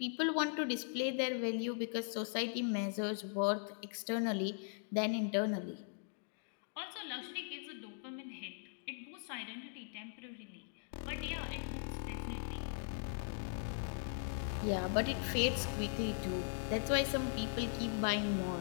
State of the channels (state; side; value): silent; right; digital silence